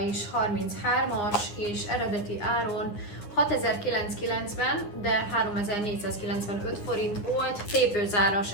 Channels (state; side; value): late; right; 9.8 ms